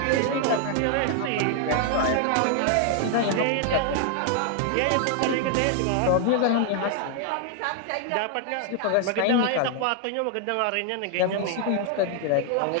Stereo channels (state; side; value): different; both; correlation 0.00